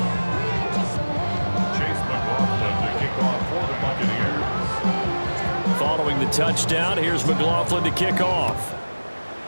Following the touchdown, here's McLaughlin to kick off.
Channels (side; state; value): both; inverted; correlation -1.00